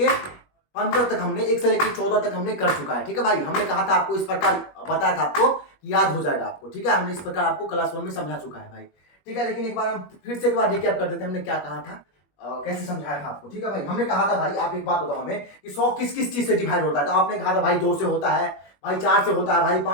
15 तक, हमने 1 से लेके 14 तक हमने कर चुका है, ठीक है भाई। हमने कहा था आपको, इस प्रकार बताया था आपको, याद हो जाएगा आपको, ठीक है। हमने इस प्रकार आपको क्लास 1 में समझा चुका है भाई, ठीक है। लेकिन एक बार हम फिर से एक बार रिकैप कर देते हैं, हमने क्या कहा था, कैसे समझाया था आपको, ठीक है भाई। हमने कहा था भाई, आप एक बात बताओ हमें कि 100 किस किस चीज से डिवाइड होता है। तो आपने कहा था भाई 2 से होता है भाई, 4 से होता है भाई,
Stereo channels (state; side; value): late; right; 21 ms